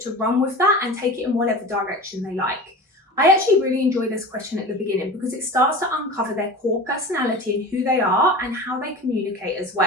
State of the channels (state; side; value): normal; both; correlation 0.33